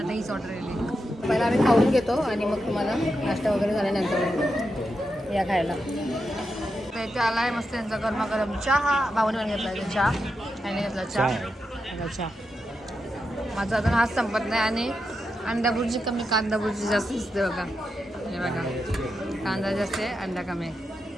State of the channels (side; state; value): both; normal; correlation 0.87